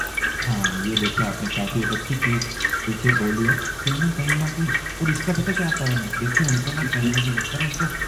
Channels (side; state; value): both; identical; correlation 1.00